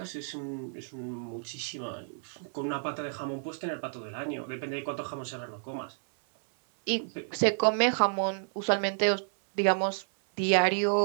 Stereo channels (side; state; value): left; silent; 58 dB below the other